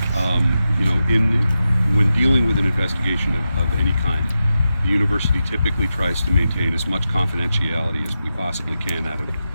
When dealing with an investigation of any kind, the university typically tries to maintain as much confidentiality as we possibly can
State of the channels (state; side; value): inverted; both; correlation -0.90